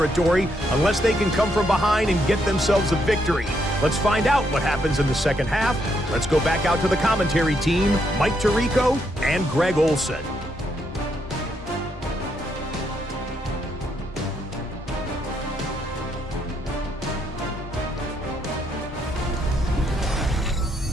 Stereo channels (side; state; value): both; normal; correlation 0.76